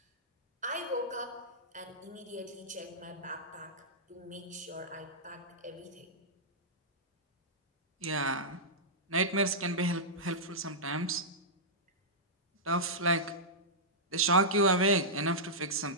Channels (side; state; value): both; normal; correlation -0.12